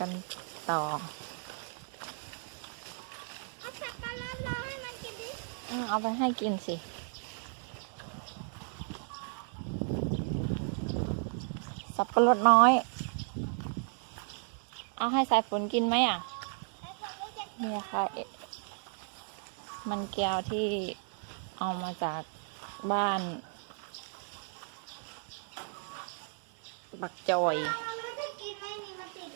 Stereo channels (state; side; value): silent; left; 55 dB below the other